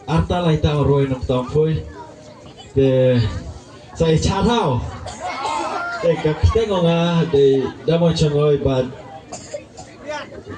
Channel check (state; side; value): identical; both; correlation 1.00